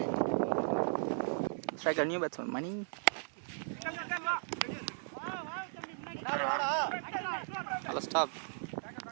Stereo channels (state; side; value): silent; left; 53 dB below the other